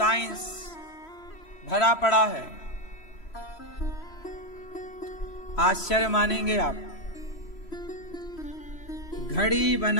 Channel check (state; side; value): late; right; 3.1 ms